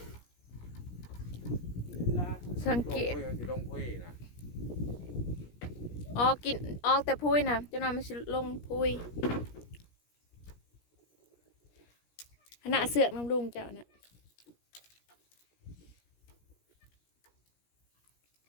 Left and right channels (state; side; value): late; right; 17 ms